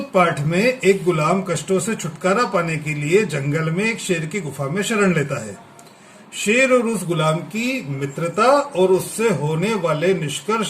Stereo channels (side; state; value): both; identical; correlation 1.00